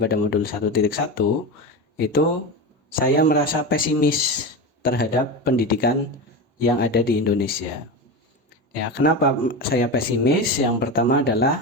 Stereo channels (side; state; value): both; normal; correlation 0.21